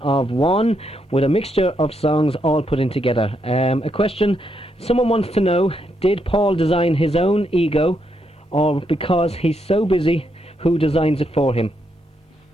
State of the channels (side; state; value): both; normal; correlation 0.79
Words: One, with a mixture of songs all put in together. A question someone wants to know: did Paul design his own ego, or because he's so busy, who designs it for him?